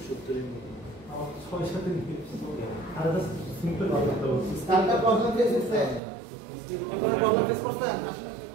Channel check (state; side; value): drops out; left; at 6.0 s